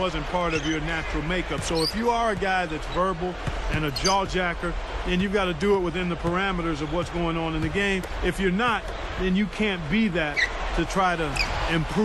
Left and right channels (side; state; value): both; identical; correlation 1.00